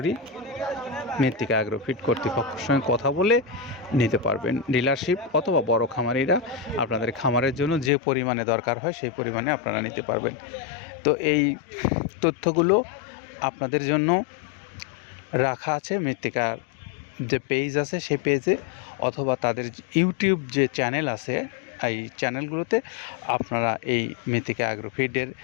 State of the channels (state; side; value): drops out; right; at 7.9 s